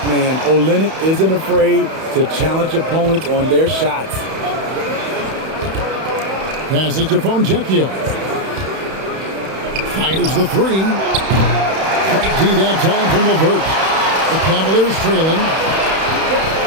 man. Olynyk isn't afraid to challenge opponents on their shots. Passes to Fontecchio. Fires the 3. Great D that time from LeVert. The Cavaliers trailing.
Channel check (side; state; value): left; late; 31 ms